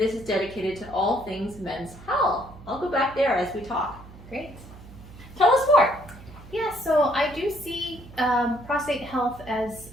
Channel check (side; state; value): right; noise; hum, 18 dB below the sound